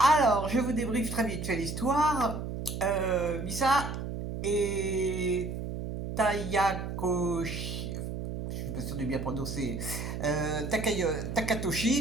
je vous débriefe très vite fait l'histoire. Misa et Tayakoshi, je suis pas sûr de bien prononcer,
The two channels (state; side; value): noise; right; hum, 5 dB below the sound